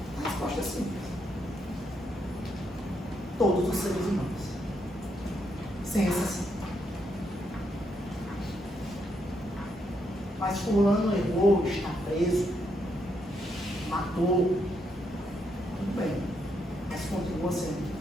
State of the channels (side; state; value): both; normal; correlation 0.78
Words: A resposta é simples. Todos os seres humanos. Sem exceção. Mas fulano errou, está preso, matou. Tudo bem. Mas continua sendo